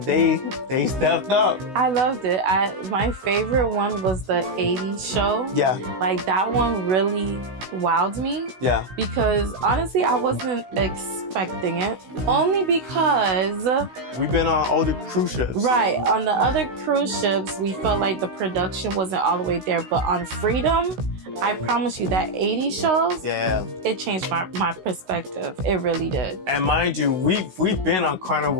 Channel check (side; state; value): left; late; 16 ms